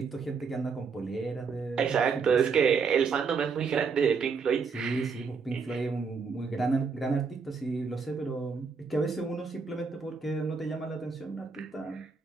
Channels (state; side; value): quieter; left; 5.3 dB